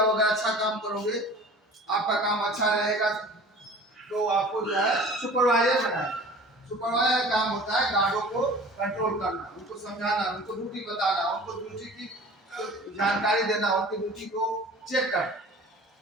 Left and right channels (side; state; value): both; normal; correlation 0.43